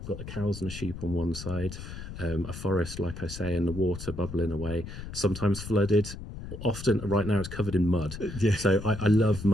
I've got the cows and the sheep on one side, a forest, like I say, and the water bubbling away, sometimes flooded. Often, right now, it's covered in mud. Yeah. So I love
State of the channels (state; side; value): noise; left; rumble, 10 dB below the sound